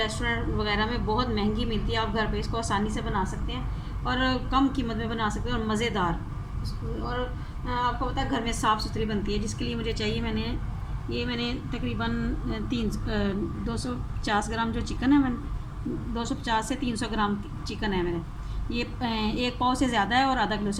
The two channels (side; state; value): both; identical; correlation 1.00